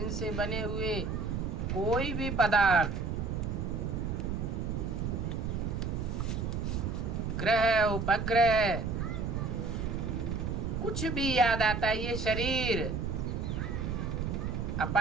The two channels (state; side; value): noise; right; rumble, 2 dB below the sound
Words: बने हुए कोई भी पदार्थ, ग्रह, उपग्रह, कुछ भी याद आता है। ये शरीर,